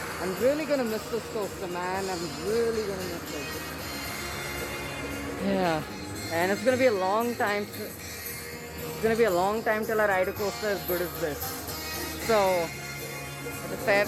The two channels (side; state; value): both; identical; correlation 1.00